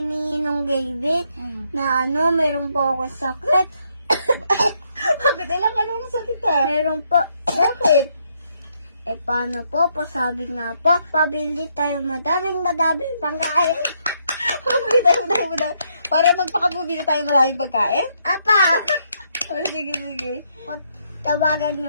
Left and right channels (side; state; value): both; inverted; correlation -0.74